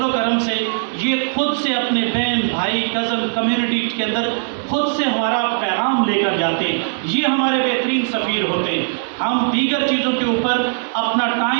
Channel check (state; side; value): silent; left; 66 dB below the other